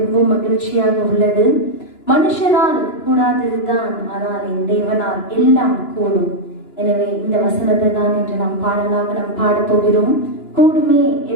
மகிழ்ச்சியாக உள்ளது. மனுஷனால் கூடாததுதான், ஆனால் என் தேவனால் எல்லாம் கூடும். எனவே இந்த வசனத்தை தான் என்று நாம் பாடலாக நாம் பாடப் போகிறோம். கூடுமே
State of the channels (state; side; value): late; right; 2.9 ms